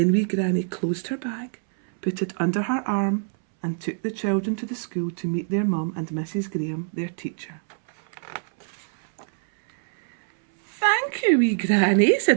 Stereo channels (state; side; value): silent; left; 62 dB below the other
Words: Wee Granny closed her bag, put it under her arm, and took the children to the school to meet their mum and Mrs. Graham, their teacher. Thank you, wee granny,